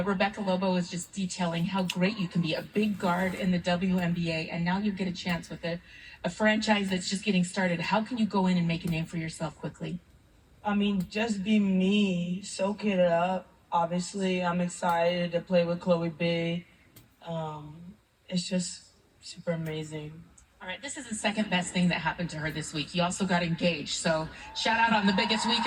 Rebecca Lobo was just detailing how great you can be, a big guard in the WNBA, and now you get a chance with a franchise that's just getting started. How can you go in and make a name for yourself quickly? I mean, just be me, soak it up. Obviously, I'm excited to play with Chloe B. It's just super amazing. All right, this is the second best thing that happened to her this week. You also got engaged, so shout out on the biggest week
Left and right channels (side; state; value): both; identical; correlation 1.00